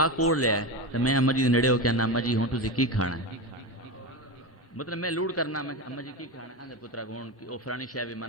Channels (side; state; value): both; normal; correlation 0.18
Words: کوڑ لیا ہے تے میں اماں جی دے نیڑے ہو کے اماں جی ہن تسی کی کھانا ہے مطلب میں لوڑ کرنا میں اماں جی کی کھانا ہے پترا ہن او فلانی شے بھی